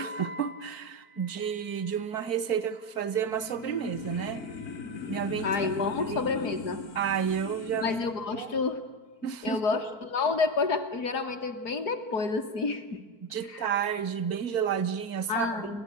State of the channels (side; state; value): right; late; 4.5 ms